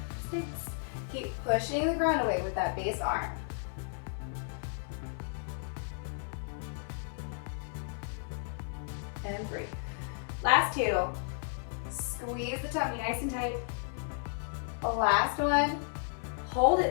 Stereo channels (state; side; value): silent; right; 55 dB below the other